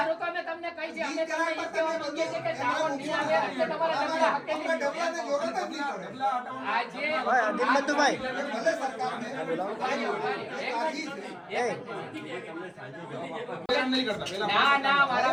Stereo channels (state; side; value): identical; both; correlation 1.00